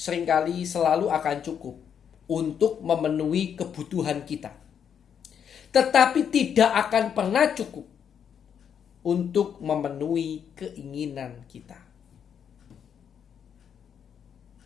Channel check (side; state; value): right; quieter; 8.0 dB